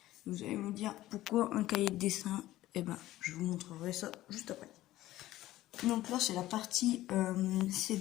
Vous allez me dire pourquoi un cahier de dessin. Eh ben, je vous montrerai ça juste après. Donc là, c'est la partie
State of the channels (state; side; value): quieter; right; 15.5 dB